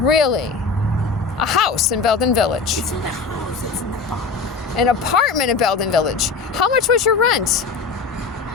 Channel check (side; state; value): right; quieter; 4.5 dB